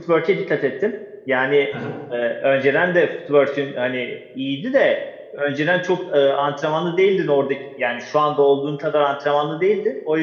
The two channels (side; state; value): both; identical; correlation 1.00